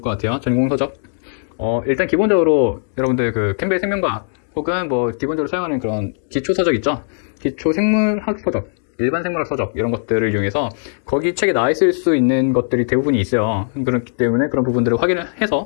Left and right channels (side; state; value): right; silent; digital silence